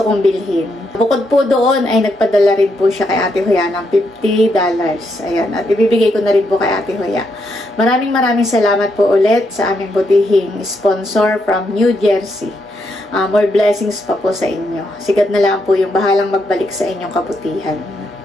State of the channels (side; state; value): both; normal; correlation 0.79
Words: kong bilhin. Bukod po doon ay nagpadala rin po siya kay Ate Hoya ng $50. Ayan, at ibibigay ko na rin po kay Ate Hoya. Maraming salamat po ulit sa aming butihing sponsor from New Jersey. More blessings pa po sa inyo. Sigat na lang po yung bahalang magbalik sa inyong kabutihan.